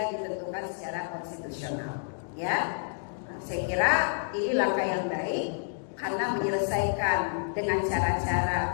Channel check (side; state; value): right; silent; digital silence